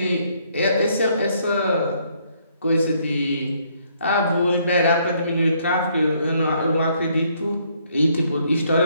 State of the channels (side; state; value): both; inverted; correlation -0.68